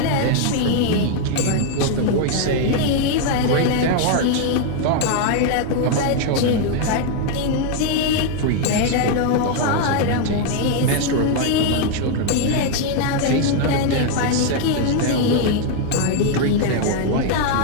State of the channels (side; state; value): both; different; correlation 0.00